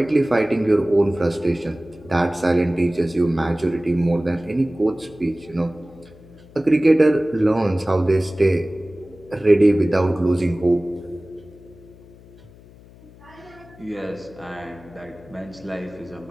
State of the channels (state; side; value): noise; left; hum, 23 dB below the sound